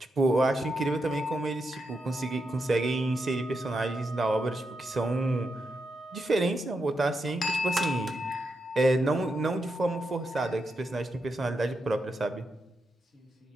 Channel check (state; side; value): normal; both; correlation 0.85